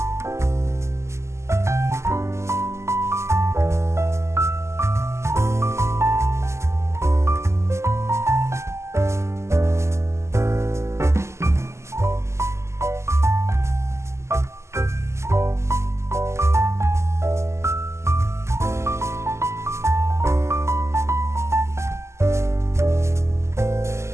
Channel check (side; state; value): left; late; 0.13 ms